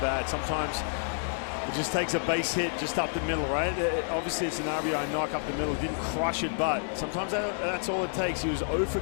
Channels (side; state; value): right; silent; digital silence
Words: Sometimes it just takes a base hit just up the middle, right? Obviously, it's an RBI knock up the middle. Didn't crush it, but sometimes that's all it takes. He was 0 for